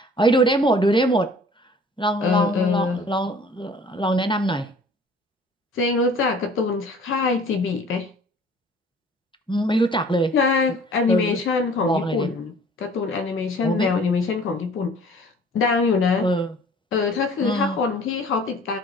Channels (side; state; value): both; normal; correlation 0.51